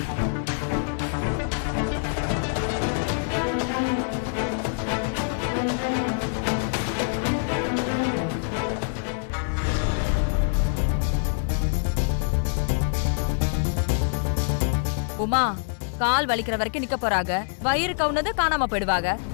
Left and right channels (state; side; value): silent; right; digital silence